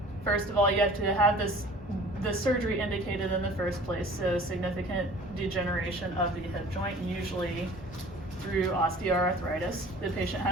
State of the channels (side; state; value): both; normal; correlation 0.47